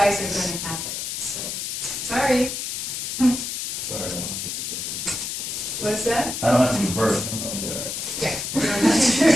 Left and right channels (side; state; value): left; noise; hiss, 4 dB below the sound